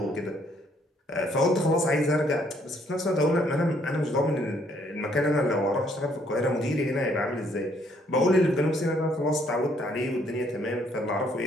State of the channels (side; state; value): both; normal; correlation 0.67